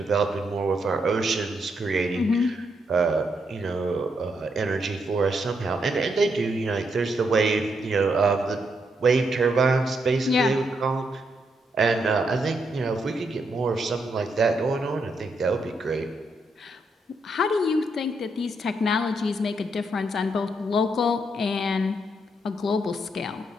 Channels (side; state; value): both; normal; correlation 0.79